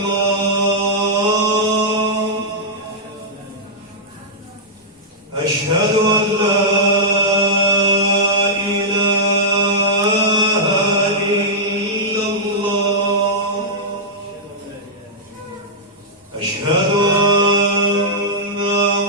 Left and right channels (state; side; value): normal; both; correlation -0.11